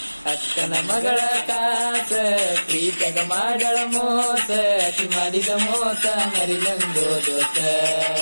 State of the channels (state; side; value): inverted; both; correlation -1.00